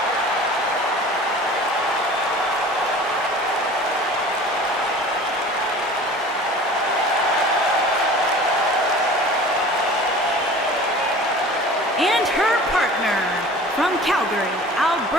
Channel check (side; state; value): both; normal; correlation 0.42